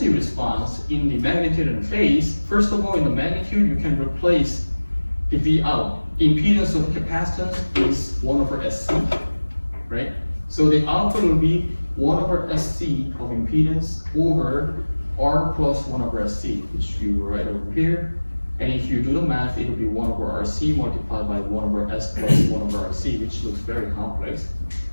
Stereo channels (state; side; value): inverted; both; correlation -1.00